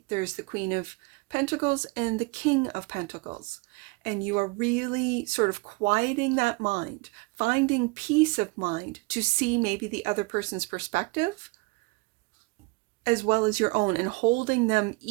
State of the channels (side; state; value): left; quieter; 25.8 dB